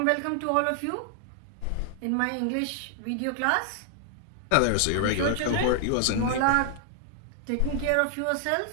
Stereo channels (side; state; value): both; different; correlation 0.00